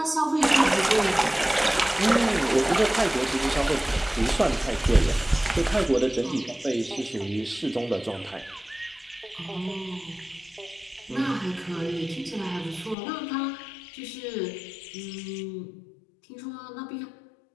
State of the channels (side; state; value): right; drops out; at 13.0 s